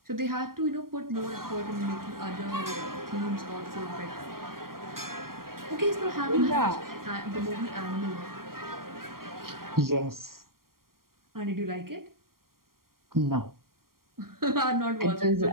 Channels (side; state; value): left; late; 0.92 ms